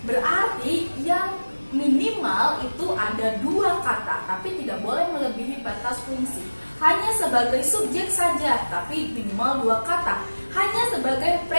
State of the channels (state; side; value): inverted; both; correlation -1.00